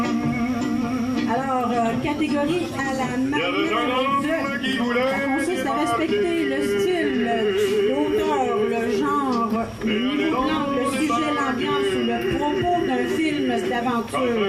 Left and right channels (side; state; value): both; identical; correlation 1.00